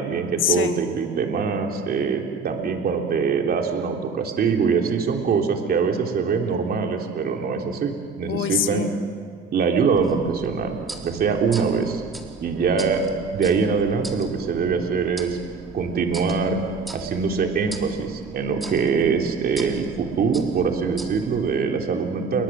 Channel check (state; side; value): quieter; left; 4.5 dB